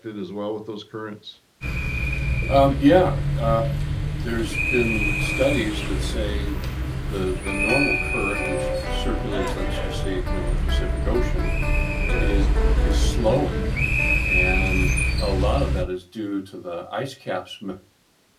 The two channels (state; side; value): identical; both; correlation 1.00